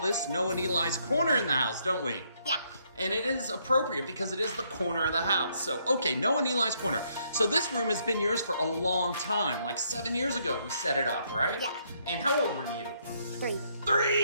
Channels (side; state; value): both; inverted; correlation -0.72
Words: Noah and Eli's Corner in the house, don't we? Yeah. And it is appropriate because it is the corner of the house. So, okay, Noah and Eli's Corner. So this room has been yours for a long time. Like 7 years ago we set it up, right? Yeah. And how old were you? 3.